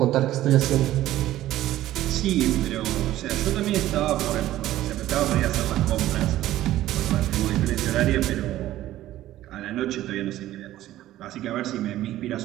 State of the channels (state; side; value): quieter; left; 14.3 dB